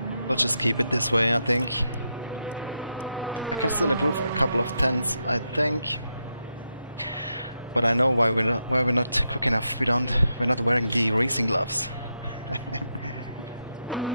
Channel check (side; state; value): both; inverted; correlation -0.84